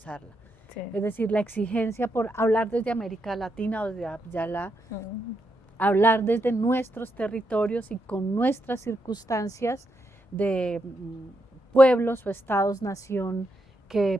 Sí. Es decir, la exigencia por hablar desde América Latina o desde Ayala, hablar desde nuestros territorios y con nuestras circunstancias de pueblos o estados, nación,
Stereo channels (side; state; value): both; normal; correlation 0.81